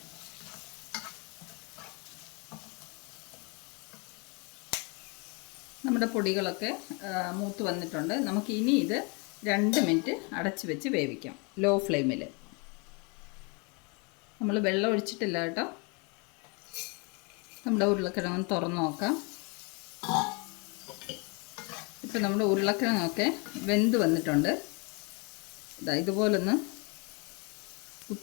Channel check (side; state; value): right; quieter; 32.0 dB